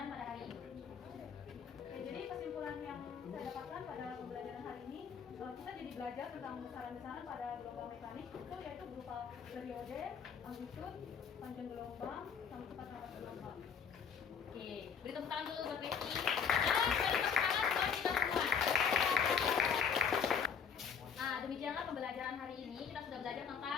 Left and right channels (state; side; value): quieter; right; 6.9 dB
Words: pada hari ini. Ya, jadi kesimpulan yang saya dapatkan pada pembelajaran hari ini, kita jadi belajar tentang besaran-besaran pada gelombang mekanik itu yaitu berupa periode, amplitude, panjang gelombang, sama cepat rambat gelombang. Oke, beri tepuk tangan dulu buat Becky. Dan beri tepuk tangan buat kita semua. Nah, demikianlah pembelajaran hari ini. Kita sudah belajar